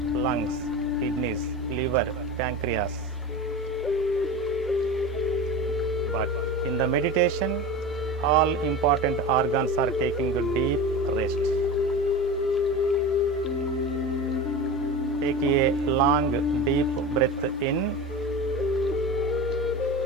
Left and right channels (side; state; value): both; normal; correlation 0.29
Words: lungs, kidneys, liver, pancreas. But in the meditation, all important organs are taking a deep rest. Take a long, deep breath in.